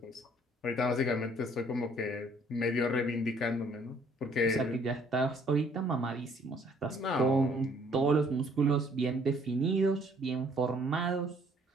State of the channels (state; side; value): normal; both; correlation 0.61